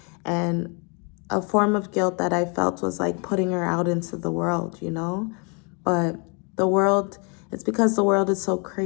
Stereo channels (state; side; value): quieter; right; 33.9 dB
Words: And a form of guilt that I felt was like putting her out into the world, But the world, it's because the world is so